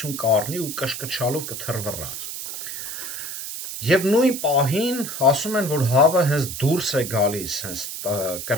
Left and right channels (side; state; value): right; noise; hiss, 7 dB below the sound